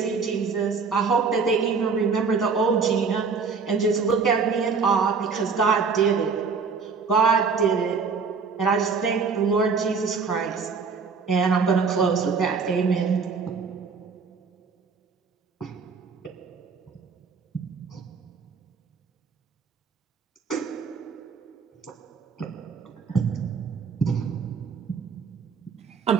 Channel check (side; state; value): left; quieter; 5.2 dB